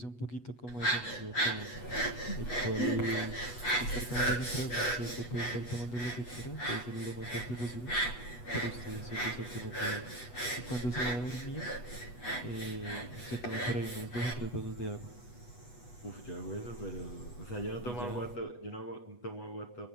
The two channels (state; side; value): late; right; 8.2 ms